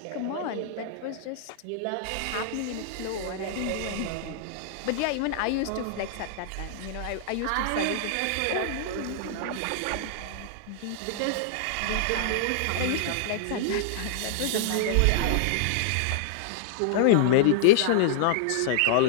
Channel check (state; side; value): different; both; correlation -0.01